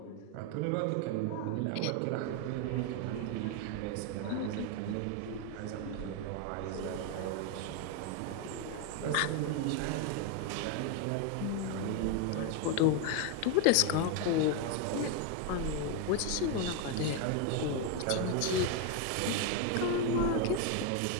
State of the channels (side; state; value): both; different; correlation 0.01